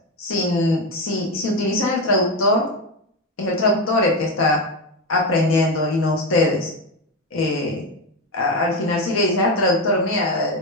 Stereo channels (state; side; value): normal; both; correlation 0.14